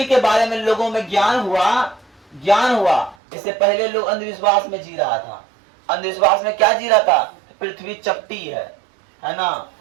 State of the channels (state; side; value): drops out; left; at 3.2 s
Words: के बारे में लोगों में ज्ञान हुआ। इससे पहले लोग अंधविश्वास में जी रहा था। अंधविश्वास में क्या जी रहा था? पृथ्वी चपटी है ना,